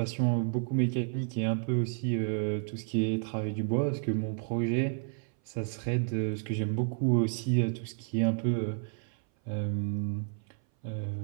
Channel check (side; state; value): left; silent; 57 dB below the other